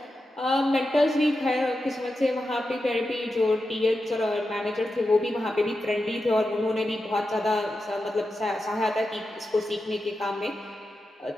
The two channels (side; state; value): both; normal; correlation 0.90